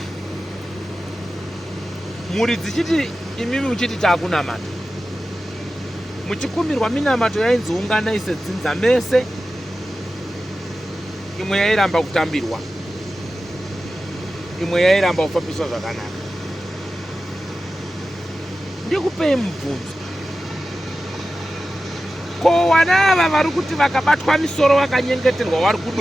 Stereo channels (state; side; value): normal; both; correlation 0.94